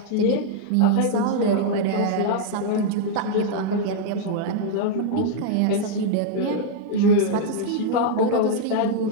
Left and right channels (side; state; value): both; different; correlation -0.01